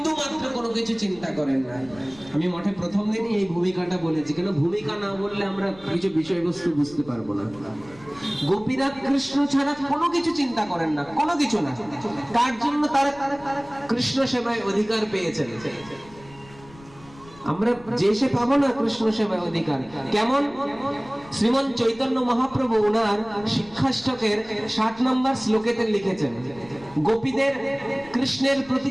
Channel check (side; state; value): left; noise; rumble, 22 dB below the sound